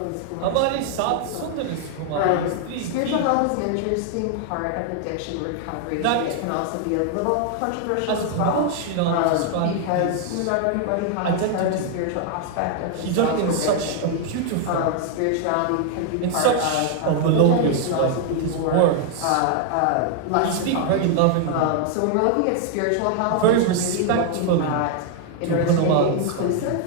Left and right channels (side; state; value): both; different; correlation 0.00